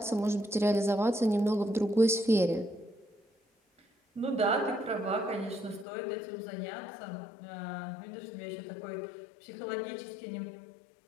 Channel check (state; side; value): drops out; right; at 5.9 s